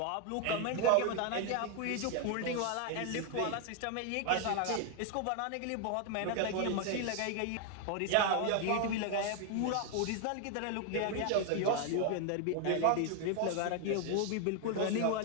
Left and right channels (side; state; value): both; different; correlation 0.00